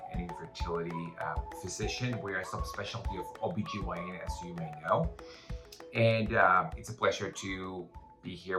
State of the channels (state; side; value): identical; both; correlation 1.00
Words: and infertility physician. We are a subspecialty of OBGYN, as you may know. And it's a pleasure to be here